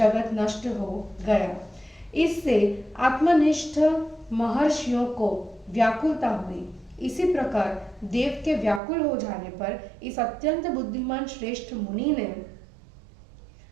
नष्ट हो गया। इससे आत्मनिष्ठ महर्षियों को व्याकुलता हुई। इसी प्रकार देव के व्याकुल हो जाने पर इस अत्यंत बुद्धिमान श्रेष्ठ मुनि ने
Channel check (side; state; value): left; drops out; at 8.8 s